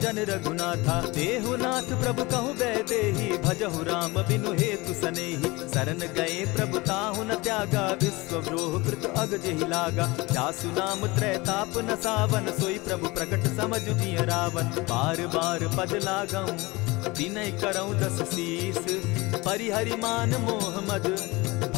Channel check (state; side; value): quieter; right; 23.0 dB